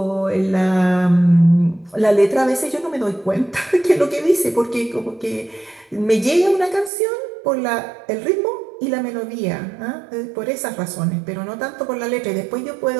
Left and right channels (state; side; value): drops out; left; at 6.9 s